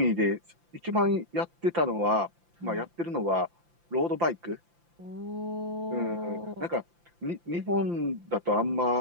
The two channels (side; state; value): left; late; 5.8 ms